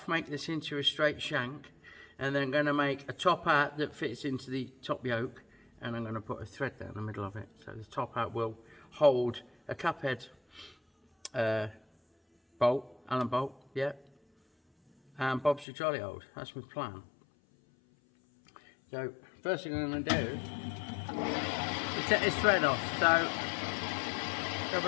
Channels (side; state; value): right; drops out; at 15.7 s